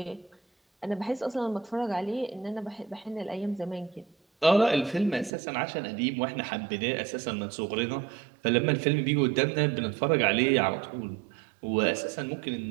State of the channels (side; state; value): left; drops out; at 5.3 s